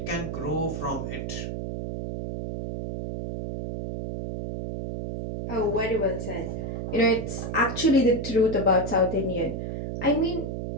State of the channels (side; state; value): right; noise; hum, 5 dB below the sound